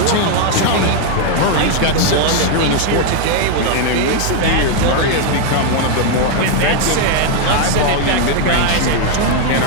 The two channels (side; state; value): both; different; correlation 0.01